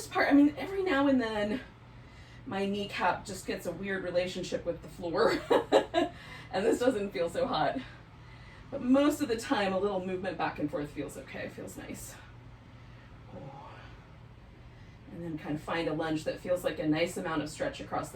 part, I mean, every now and then my kneecap just gets a weird relationship with the floor and this doesn't feel so hot. But most of the time, a little movement back and forth feels okay, feels nice. And then kind of find a lunge that feels like a nice amount of stretch across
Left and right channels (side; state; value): both; identical; correlation 1.00